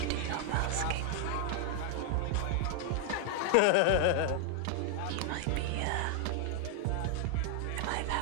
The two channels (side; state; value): both; different; correlation 0.00